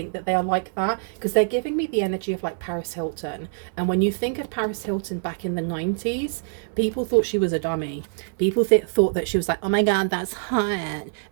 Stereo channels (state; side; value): silent; left; 60 dB below the other